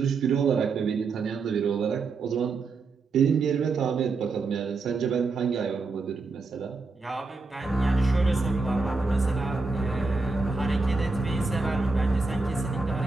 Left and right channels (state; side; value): quieter; left; 4.0 dB